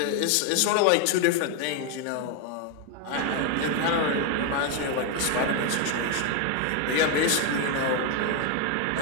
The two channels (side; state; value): both; different; correlation 0.01